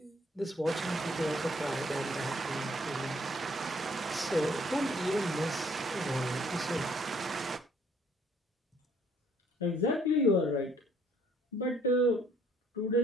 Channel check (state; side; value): normal; both; correlation 0.63